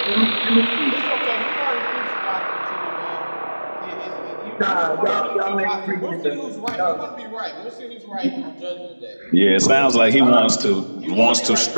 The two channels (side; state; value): both; inverted; correlation -1.00